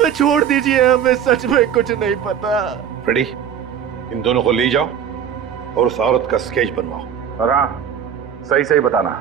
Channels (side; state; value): left; quieter; 8.7 dB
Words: छोड़ दीजिए, हमें सच में कुछ नहीं पता। फ्रेडी, इन दोनों को ले जाओ और उस औरत का स्केच बनवाओ। और हाँ, सही सही बताना,